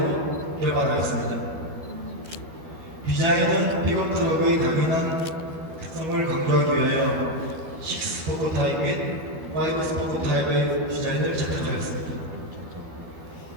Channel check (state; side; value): late; left; 12 ms